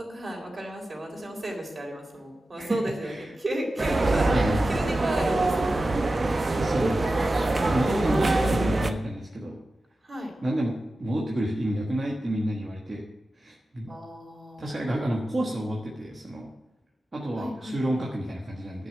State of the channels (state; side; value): normal; both; correlation 0.94